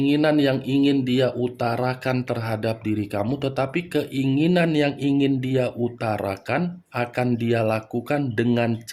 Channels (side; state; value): both; identical; correlation 1.00